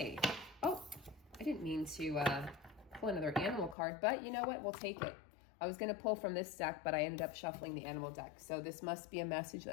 Oh, I didn't mean to pull another animal card, but you know what? We'll take it. I was going to pull from this deck, but I ended up shuffling the animal deck. So this must be a message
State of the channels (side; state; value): right; drops out; at 3.8 s